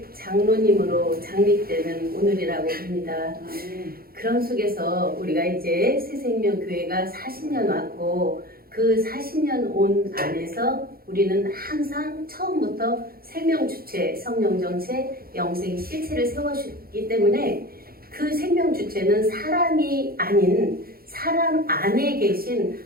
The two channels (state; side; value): late; left; 0.44 ms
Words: 장로님으로 장립되는 오늘이라고 봅니다. 그런 속에서 우리가 이제 새생명교회가 40년 왔고 그 40년 온 안에서 우리는 항상 처음부터 생명주체, 성령정체, 영생 실체를 세워주기 때문에 그 생명주체는 사람이 아닌 사람 안에 계신